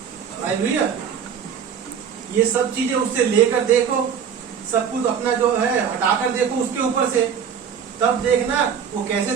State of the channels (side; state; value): left; quieter; 7.6 dB